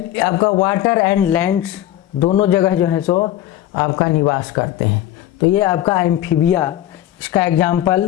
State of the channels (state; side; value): quieter; right; 13.1 dB